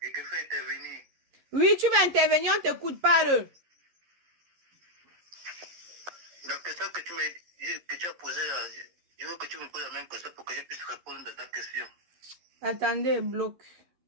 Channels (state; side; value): late; left; 11 ms